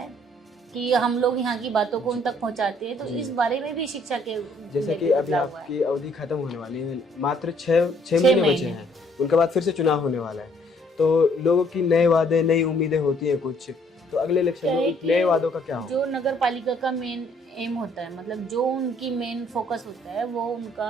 है कि हम लोग यहाँ की बातों को उन तक पहुँचाते हैं। तो इस बारे में भी शिक्षा के जैसे कि लेके अभी बदलाव हुआ है। आपकी अवधि खत्म होने वाली है, मात्र 6 महीने बचे हैं, उनके बाद फिर से चुनाव होने वाला है। तो लोगों की नए वादे, नई उम्मीदें होती हैं कुछ, तो अगले इलेक्शन क्या है में कि नए वादों का क्या होगा? जो नगर पालिका का मेन एम होता है, मतलब जो उनकी मेन फोकस होता है, वो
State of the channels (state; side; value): normal; both; correlation 0.64